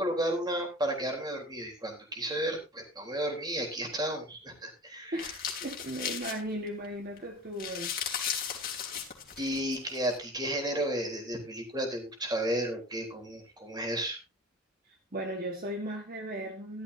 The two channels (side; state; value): both; normal; correlation 0.37